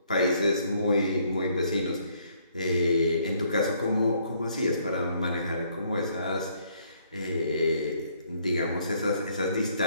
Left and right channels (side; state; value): both; inverted; correlation -0.67